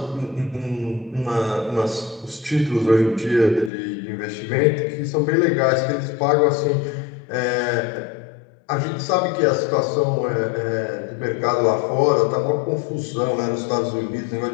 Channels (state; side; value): drops out; right; at 3.7 s